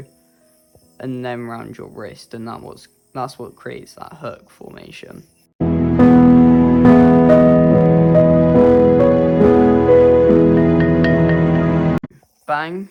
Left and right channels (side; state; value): both; identical; correlation 1.00